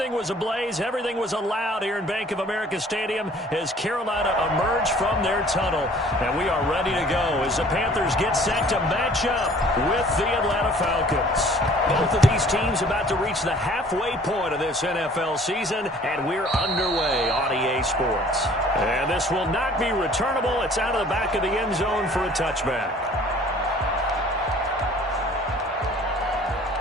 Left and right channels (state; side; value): normal; both; correlation 0.53